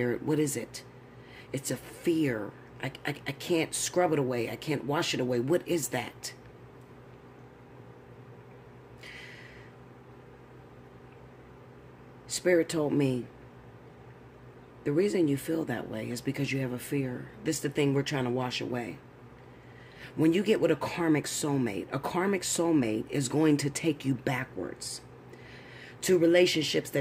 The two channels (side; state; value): both; identical; correlation 1.00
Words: What is it? It's a fear. I can't scrub it away. I can't wash it away. What is that? Spirit told me, the reason you feel that way is because you have a fear. This is the thing we're trying to wash away. When you get with a karmic soulmate is going to take you backwards to relationships